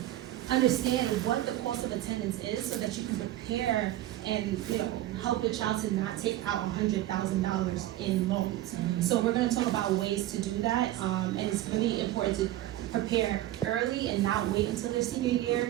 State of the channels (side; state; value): left; quieter; 14.6 dB